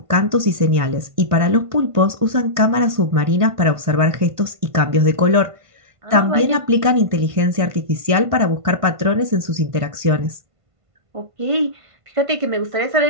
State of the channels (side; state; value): left; late; 1.5 ms